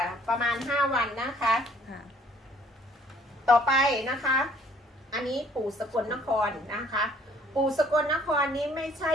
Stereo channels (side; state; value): both; normal; correlation 0.59